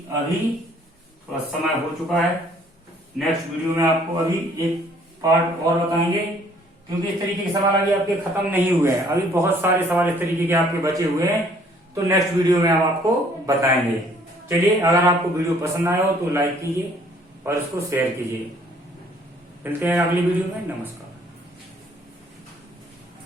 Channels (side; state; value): both; normal; correlation 0.60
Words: अभी थोड़ा समय हो चुका है। नेक्स्ट वीडियो में आपको अभी एक पार्ट और बताएंगे, क्योंकि इस तरीके के सवाल अभी आपके खत्म नहीं हुए हैं। अभी बहुत सारे सवाल इस तरीके के आपके बचे हुए हैं, तो नेक्स्ट वीडियो में हम आपको बताएंगे। चलिए, अगर आपको वीडियो पसंद आया हो तो लाइक कीजिए और इसको शेयर कीजिए। मिलते हैं अगली वीडियो में। नमस्कार।